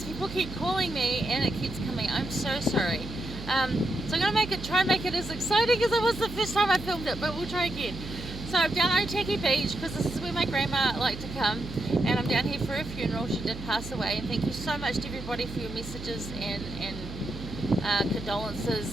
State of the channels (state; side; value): noise; right; hum, 10 dB below the sound